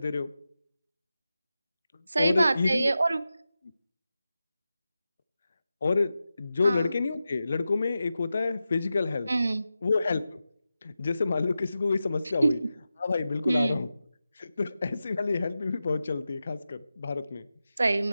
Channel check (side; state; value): both; inverted; correlation -0.92